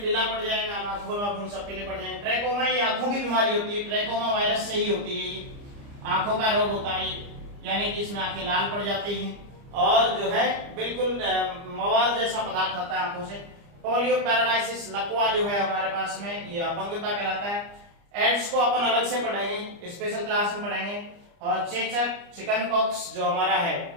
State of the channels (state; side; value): late; left; 29 ms